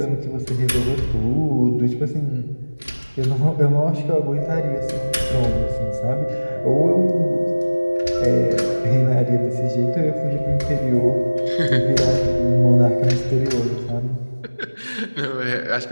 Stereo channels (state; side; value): inverted; both; correlation -1.00